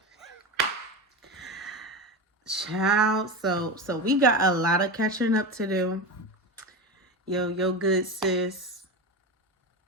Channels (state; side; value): normal; both; correlation 0.22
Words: Child. So we got a lot of catching up to do. Yo, good sis